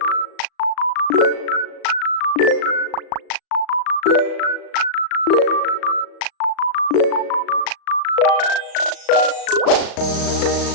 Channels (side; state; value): right; late; 37 ms